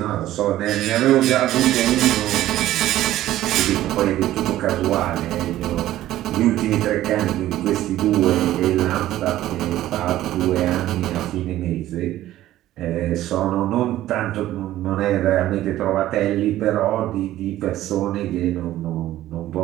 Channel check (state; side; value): quieter; left; 14.2 dB